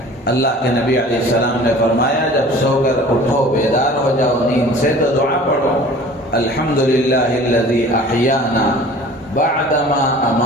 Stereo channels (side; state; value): both; normal; correlation 0.45